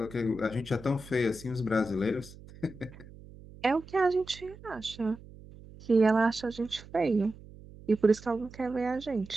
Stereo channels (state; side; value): noise; right; hum, 19 dB below the sound